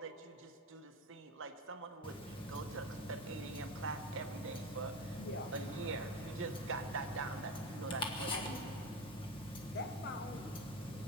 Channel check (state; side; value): normal; both; correlation 0.24